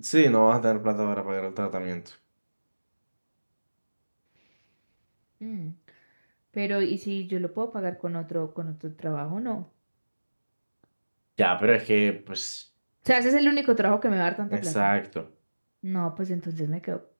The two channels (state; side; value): inverted; both; correlation -1.00